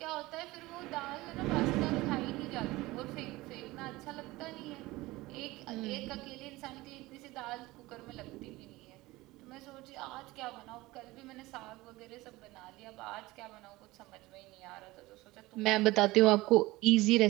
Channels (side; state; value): left; quieter; 19.7 dB